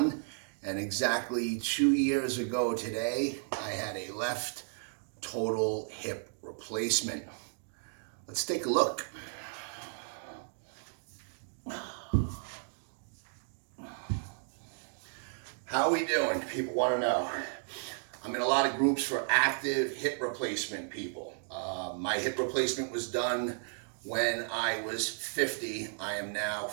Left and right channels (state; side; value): silent; left; digital silence